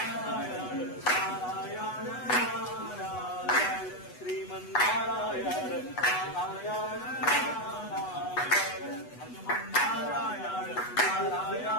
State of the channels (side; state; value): right; late; 8.1 ms